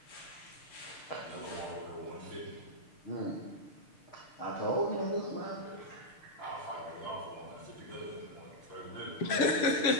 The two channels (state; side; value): late; right; 6.6 ms